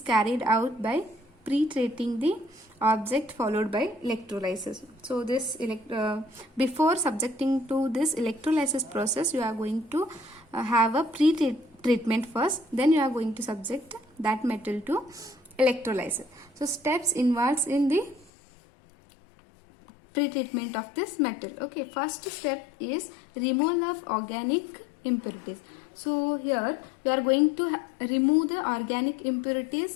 out by pre-treating the object followed by electrolysis. So this before subjecting to this electrolysis process, you are going to have a pre-treatment first. Then you are going to subject that metal to electrolysis. So steps involved in the pre-treatment of this metal. Okay, first step is removal of organic impurities. So here we are going to remove the organic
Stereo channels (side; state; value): right; drops out; at 18.3 s